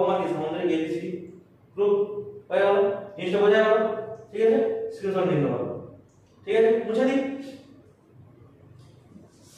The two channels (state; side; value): identical; both; correlation 1.00